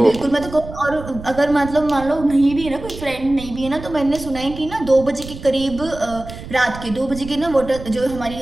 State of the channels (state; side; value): noise; right; rumble, 13 dB below the sound